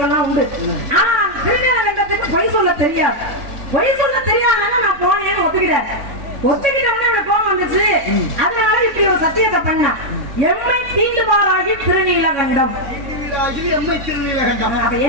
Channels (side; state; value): left; late; 3.6 ms